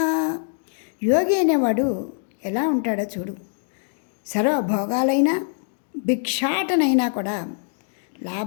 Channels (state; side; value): silent; right; digital silence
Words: యోగి అనేవాడు ఎలా ఉంటాడో చూడు. సర్వభోగాలైనా భిక్షాటనైనా కూడా